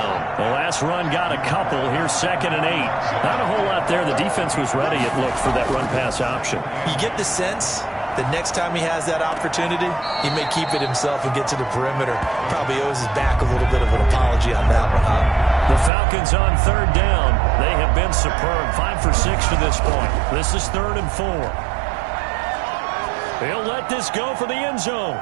The last run got a couple. Here's 2nd and 8. Not a whole lot there. The defense was ready, it looked, for that run-pass option. You get the sense that next time he has that opportunity, he may keep it himself and get to the perimeter. Probably owes his back a little bit of an apology on that one, huh? The Falcons on 3rd down. They have been superb. 5 for 6 to this point. This is 3rd and 4. He'll let this go for the end zone.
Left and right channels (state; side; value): drops out; left; at 15.9 s